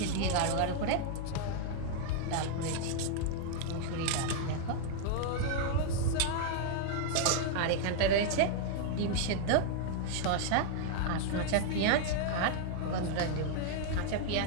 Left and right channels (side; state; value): both; different; correlation 0.00